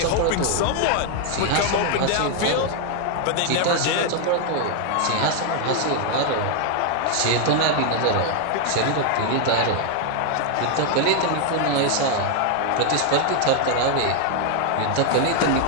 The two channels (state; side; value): different; both; correlation 0.00